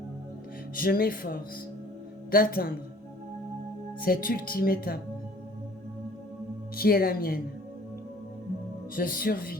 Je m'efforce d'atteindre cette ultime étape qui est la mienne. Je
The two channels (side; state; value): both; normal; correlation 0.52